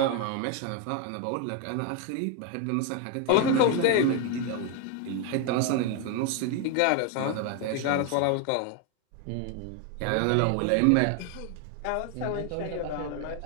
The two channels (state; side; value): different; both; correlation 0.01